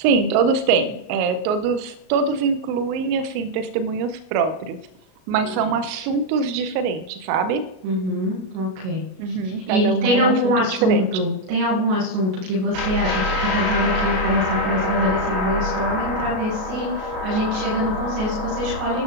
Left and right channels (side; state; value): left; late; 38 ms